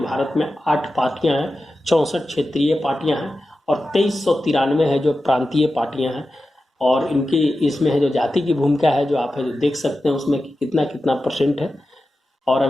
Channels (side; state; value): both; normal; correlation 0.93